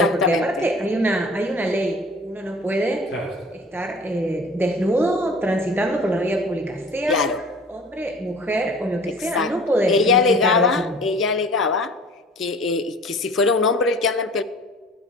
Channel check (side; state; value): both; normal; correlation 0.46